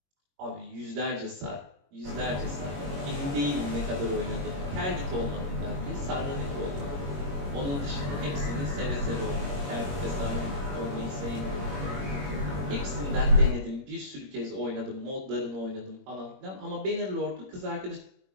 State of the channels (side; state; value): left; late; 21 ms